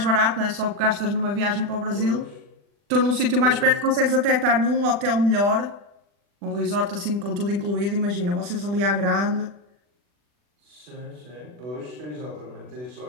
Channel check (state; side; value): late; left; 40 ms